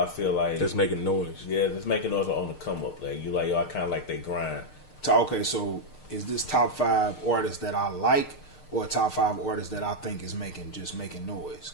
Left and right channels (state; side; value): late; right; 6.6 ms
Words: feel like that's making noise. Yeah, that's making noise on the come up. Like you like, yo, I kind of like they grind. Okay, so is this top 5 artists that I like, or top 5 artists that I think is making noise?